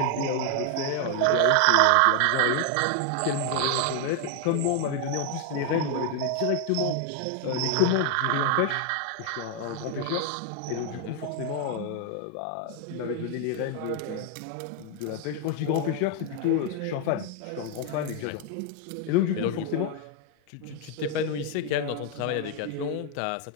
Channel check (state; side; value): different; both; correlation 0.01